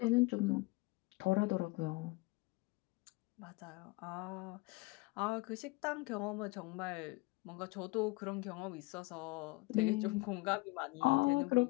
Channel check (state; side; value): quieter; right; 23.1 dB